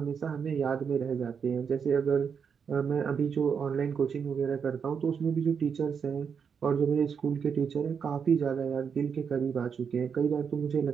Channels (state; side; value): quieter; left; 6.7 dB